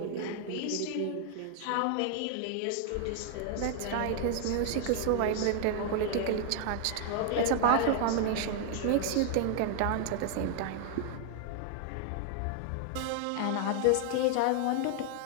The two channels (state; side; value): different; both; correlation 0.00